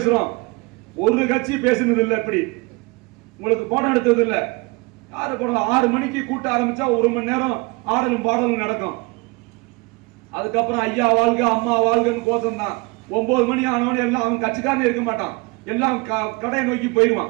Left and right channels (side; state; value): left; quieter; 26.6 dB